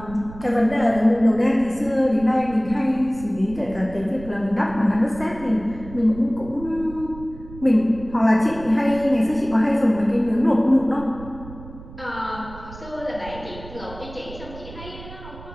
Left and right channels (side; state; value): right; noise; rumble, 16 dB below the sound